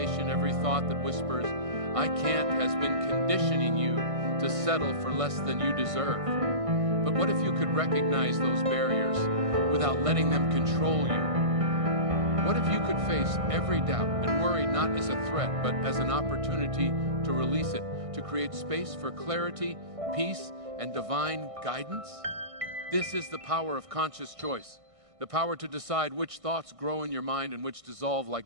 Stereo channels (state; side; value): late; left; 1.6 ms